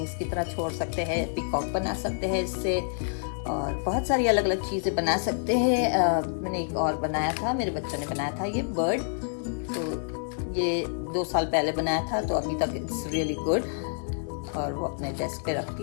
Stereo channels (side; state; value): right; silent; 56 dB below the other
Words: की तरह छोड़ सकते हैं, पीकॉक बना सकते हैं इससे, और बहुत सारी अलग अलग चीज़ें बना सकते हैं। मैंने एक और बनाया था, मेरे बच्चों ने बनाया था ये बर्ड, तो ये 2 साल पहले बनाया था, तो अभी तक इट्स रियली गुड, और वो अपने डेस्क पे रखती